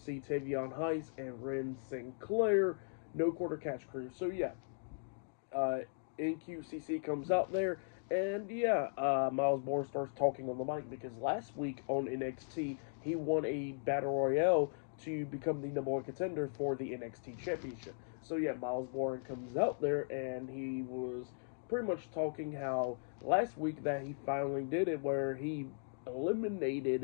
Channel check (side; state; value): right; silent; digital silence